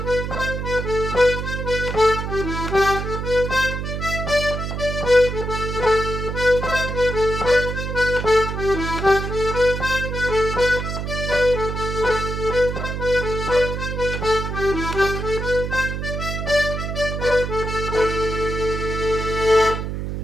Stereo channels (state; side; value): noise; right; hum, 4 dB below the sound